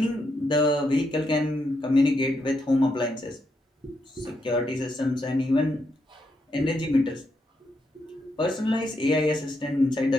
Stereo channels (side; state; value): both; normal; correlation 0.80